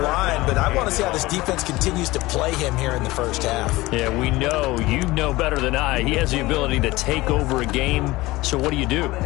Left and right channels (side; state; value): right; quieter; 19.7 dB